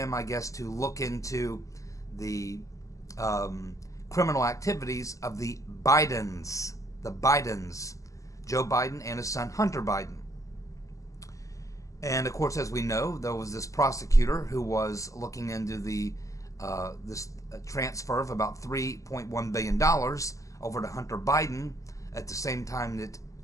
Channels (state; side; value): late; right; 0.16 ms